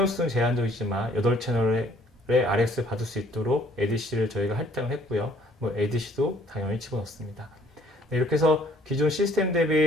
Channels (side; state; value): both; normal; correlation 0.60